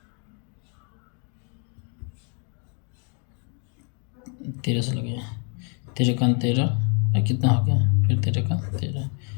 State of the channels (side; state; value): right; quieter; 39.0 dB